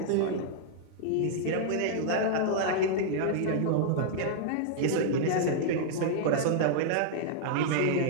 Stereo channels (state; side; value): different; both; correlation -0.01